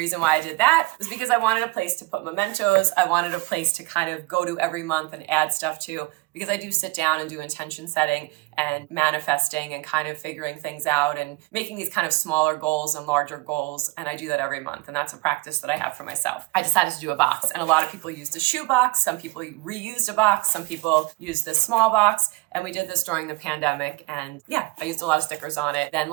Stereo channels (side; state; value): left; quieter; 23.0 dB